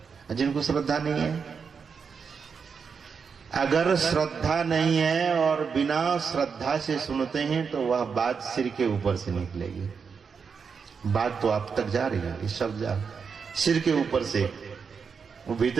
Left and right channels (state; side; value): quieter; left; 5.9 dB